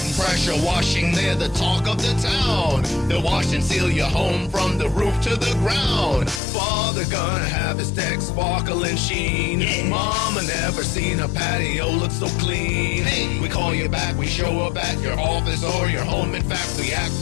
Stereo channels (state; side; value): drops out; right; at 6.4 s